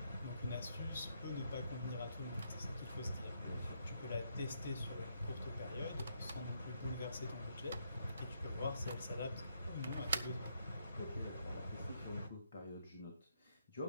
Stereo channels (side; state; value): both; inverted; correlation -0.76